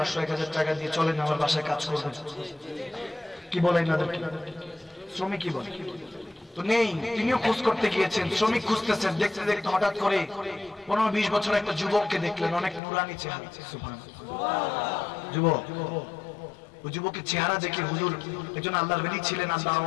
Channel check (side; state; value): right; drops out; at 12.8 s